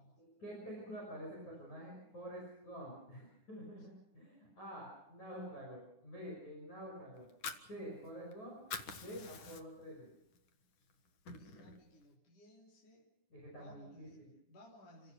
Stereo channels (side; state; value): right; late; 9.9 ms